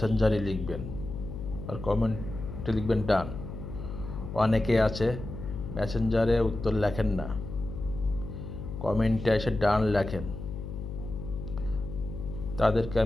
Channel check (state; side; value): noise; left; hum, 8 dB below the sound